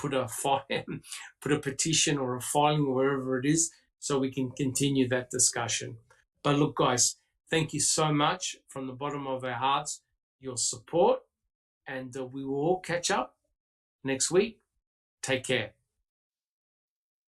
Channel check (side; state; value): both; identical; correlation 1.00